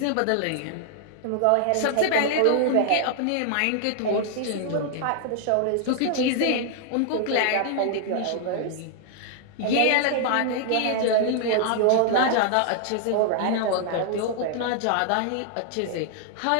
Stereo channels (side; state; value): both; different; correlation 0.00